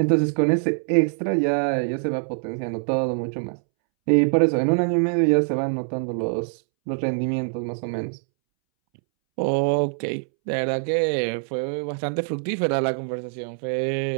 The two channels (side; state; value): left; silent; 63 dB below the other